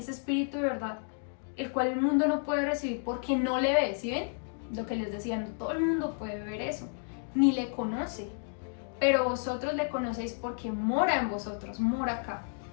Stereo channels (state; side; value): silent; right; 57 dB below the other